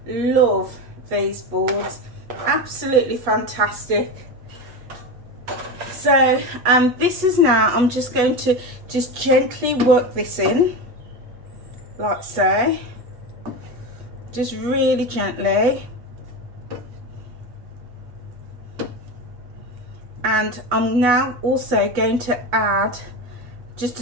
love these boards, absolutely fantastic. So this is now, I'm just going to just gently work this in like so, just really gently. And I'm now also going to add just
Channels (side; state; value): left; late; 8.2 ms